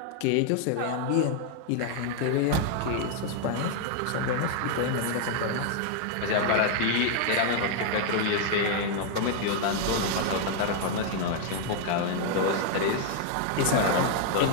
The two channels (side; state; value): both; different; correlation 0.00